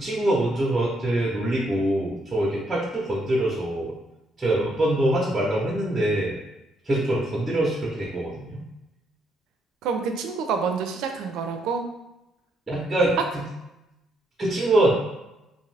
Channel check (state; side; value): normal; both; correlation 0.75